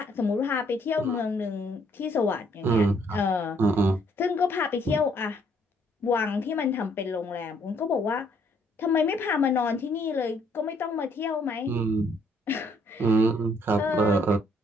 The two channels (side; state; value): both; normal; correlation 0.66